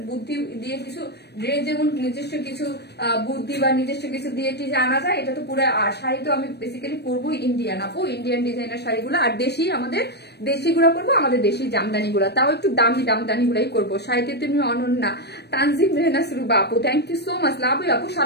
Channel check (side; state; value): right; late; 0.48 ms